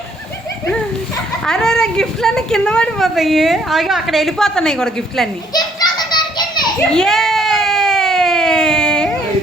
అరే అరే గిఫ్ట్లన్నీ కింద పడిపోతాయి అయ్యో అక్కడ వెళ్ళిపోతున్నాయి కూడా గిఫ్ట్లన్నీ ఏ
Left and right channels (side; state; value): both; normal; correlation 0.66